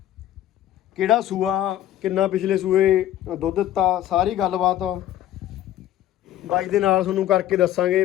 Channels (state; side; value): quieter; right; 12.6 dB